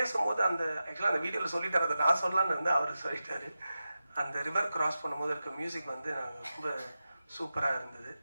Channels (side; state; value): both; inverted; correlation -0.92